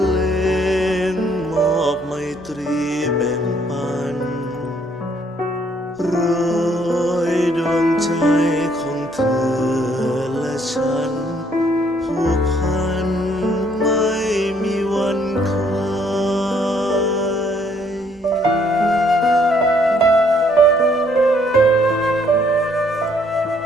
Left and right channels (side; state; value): both; normal; correlation 0.66